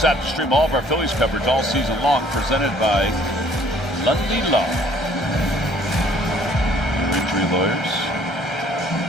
app to stream all of our Phillies coverage all season long. Presented by Ludley Law. Injury lawyers.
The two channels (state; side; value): normal; both; correlation 0.59